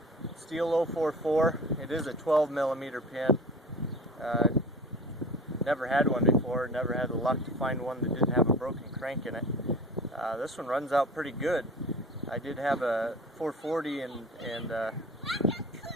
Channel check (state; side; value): normal; both; correlation 0.38